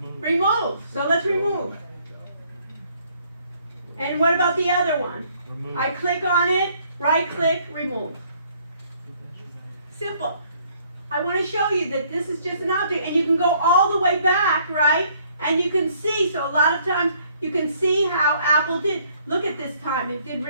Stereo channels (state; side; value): inverted; both; correlation -0.64